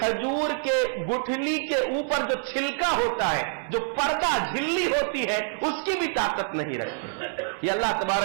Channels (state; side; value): silent; left; 59 dB below the other